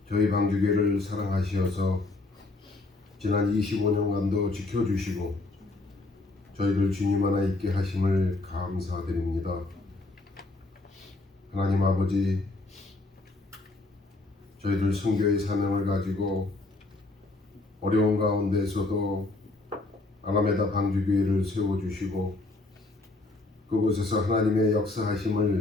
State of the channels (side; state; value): right; quieter; 3.1 dB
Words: 저희 방주교회를 사랑하시어서 지난 25년간도 지켜주시고 저희들 주님 하나 있게 하심을 감사드립니다. 하나님 아버지, 저희들 선교의 사명을 가지고 어려운 가운데서도 아라메다 방주교회를 세워주시고 그곳에서 하나님의